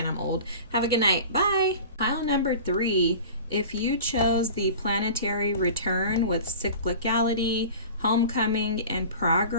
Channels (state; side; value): inverted; both; correlation -0.38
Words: I'm old. Have a good night. Bye. Pile number 3 If you chose the planetary return with cyclicality, homecoming, and